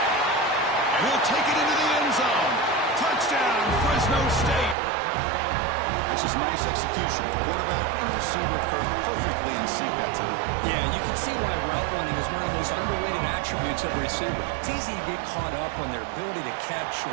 And he'll take it into the end zone. Touchdown, Fresno State. That's just nice execution. Quarterback and receiver perfectly in sync that time. Yeah, you can see why route running is one of the most underrated attributes of a receiver. It's easy to get caught up on their ability to catch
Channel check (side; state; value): left; drops out; at 4.8 s